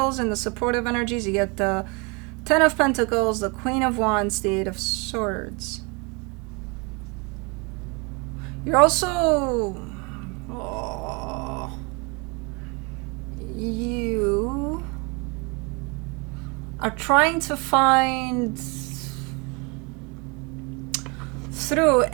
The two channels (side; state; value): left; quieter; 30.4 dB